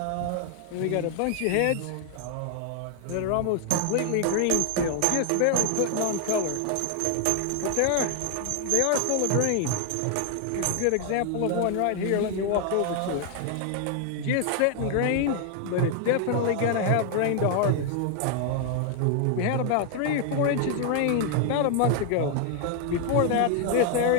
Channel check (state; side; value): different; both; correlation 0.00